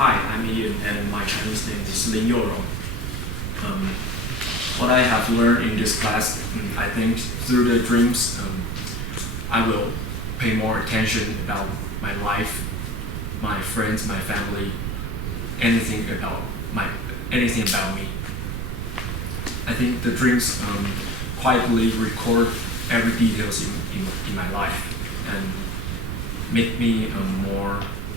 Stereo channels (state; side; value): noise; right; rumble, 3 dB below the sound